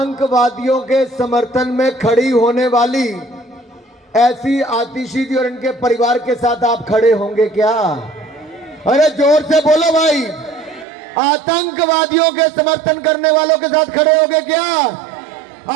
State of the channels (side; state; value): left; drops out; at 10.9 s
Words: के समर्थन में खड़ी होने वाली ऐसी आतिशी जी और इनके परिवार के साथ आप खड़े होंगे क्या? अरे जोर से बोलो भाई। आतंकवादियों के समर्थन करने वालों के साथ खड़े होंगे क्या?